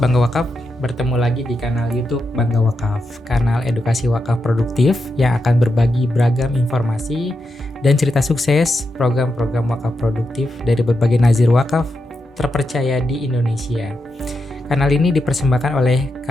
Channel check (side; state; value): both; normal; correlation 0.86